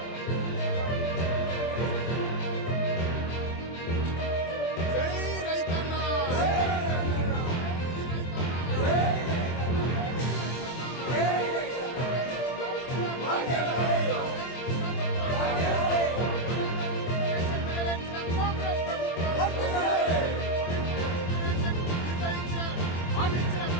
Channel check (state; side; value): late; right; 24 ms